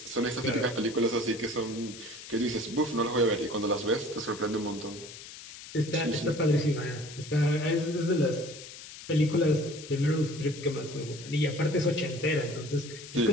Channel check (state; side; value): noise; left; hiss, 14 dB below the sound